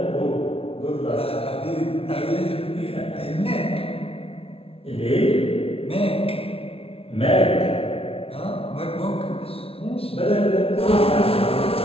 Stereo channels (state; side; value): late; right; 0.27 ms